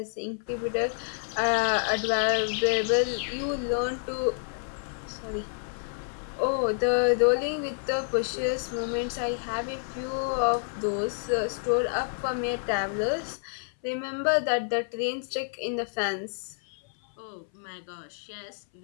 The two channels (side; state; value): right; silent; 58 dB below the other